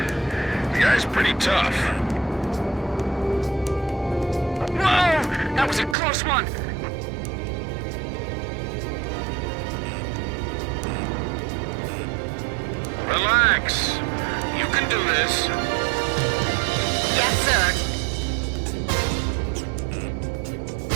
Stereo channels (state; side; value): drops out; left; at 6.0 s